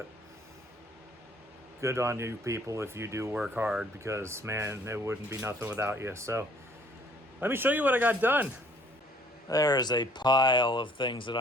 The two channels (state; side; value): normal; both; correlation 0.59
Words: good on you people if you do work hard, because man, it wouldn't be nothing without you. So let me show you what I got done. There's a pile of things that